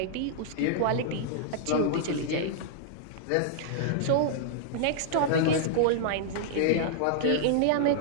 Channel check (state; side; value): different; both; correlation -0.01